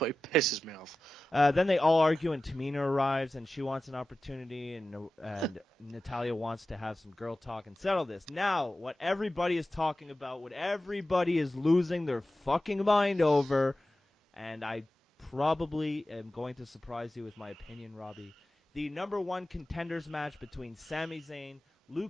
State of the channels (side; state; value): both; normal; correlation 0.95